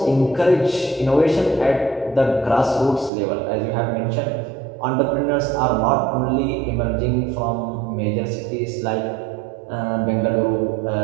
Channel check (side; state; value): left; drops out; at 3.1 s